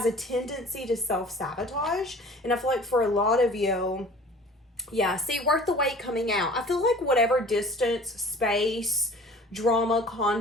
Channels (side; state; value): both; normal; correlation 0.46